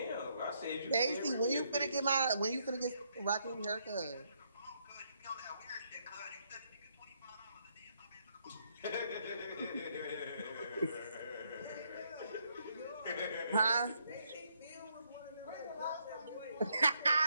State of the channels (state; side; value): inverted; both; correlation -0.74